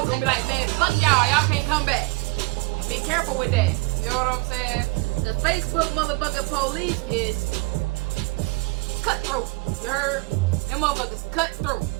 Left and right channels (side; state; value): left; quieter; 26.2 dB